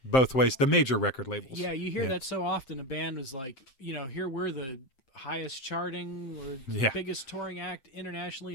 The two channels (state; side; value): late; right; 7.6 ms